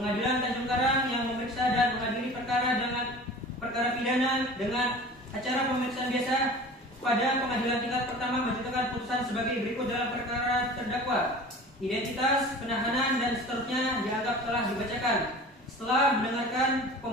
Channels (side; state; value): both; normal; correlation 0.40